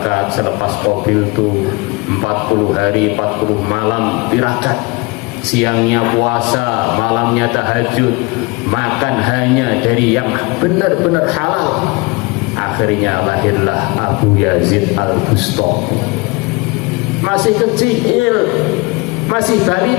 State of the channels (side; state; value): right; quieter; 26.2 dB